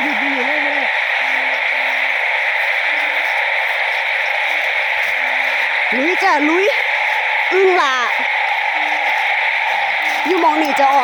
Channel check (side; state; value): both; identical; correlation 1.00